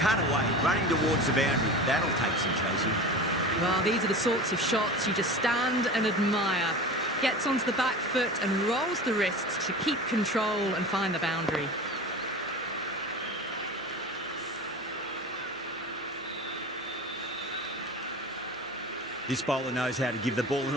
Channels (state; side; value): noise; right; hum, 27 dB below the sound